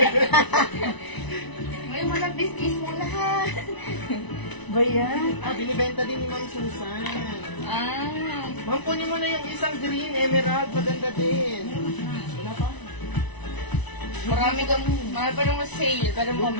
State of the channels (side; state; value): right; late; 1.0 ms